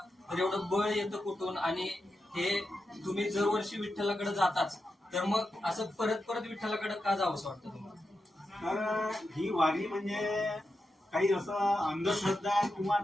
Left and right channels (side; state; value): both; normal; correlation 0.88